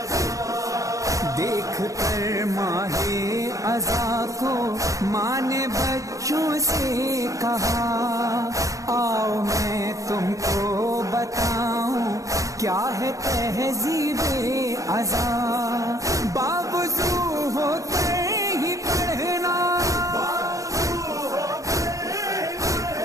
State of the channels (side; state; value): left; late; 0.16 ms